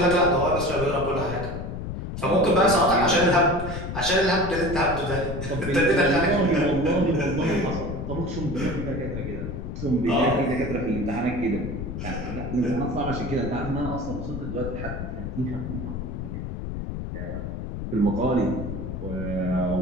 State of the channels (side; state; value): left; noise; rumble, 6 dB below the sound